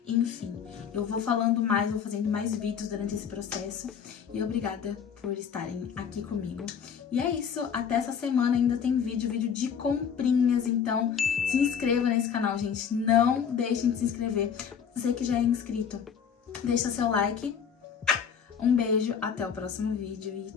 Enfim, eu vou falando mais, vou fazendo mais vídeos durante esse processo. E obrigada por estarem aqui comigo. E é isso, até essa semana ainda tem vídeo de comprinhas. Então se inscreva nesse canal, gente. Não deixem de se inscrever. Você que já é inscrito, deixa seu like. Um beijo, até o próximo vídeo e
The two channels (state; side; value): quieter; right; 7.4 dB